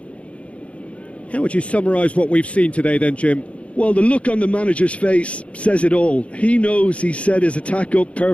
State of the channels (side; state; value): right; late; 0.063 ms